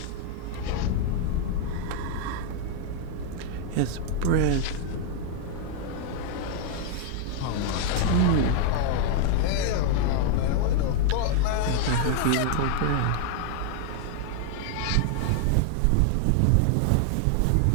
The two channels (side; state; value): both; different; correlation 0.00